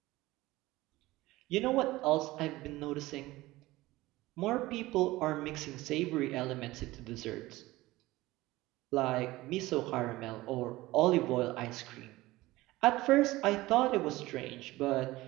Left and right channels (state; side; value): quieter; left; 18.6 dB